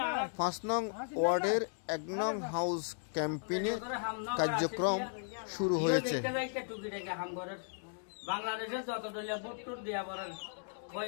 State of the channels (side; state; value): right; silent; digital silence